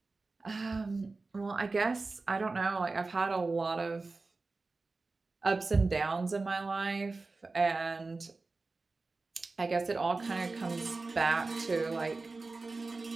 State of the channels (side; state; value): left; quieter; 3.7 dB